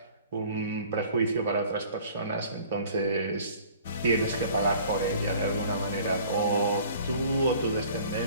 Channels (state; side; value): inverted; both; correlation -0.50